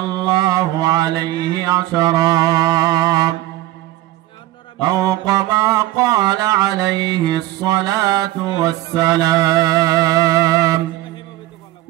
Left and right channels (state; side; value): quieter; left; 15.9 dB